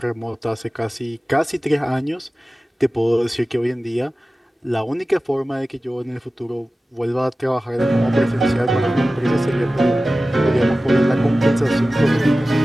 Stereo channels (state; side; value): normal; both; correlation 0.96